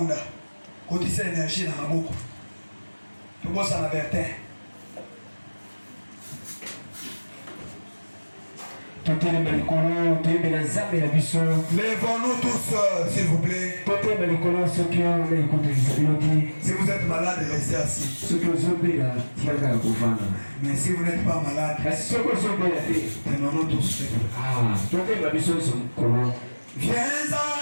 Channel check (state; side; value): inverted; both; correlation -1.00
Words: quand il s'est énergie dans la boucle, tout le monde s'en avertait. Lèvons-nous tous, s'il vous plaît. Si vous êtes malade, restez assis. Mais si vous n'êtes pas malade, tenons-nous tous. Viens